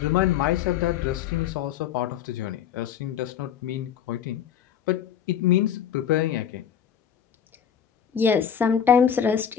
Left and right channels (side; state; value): right; quieter; 8.8 dB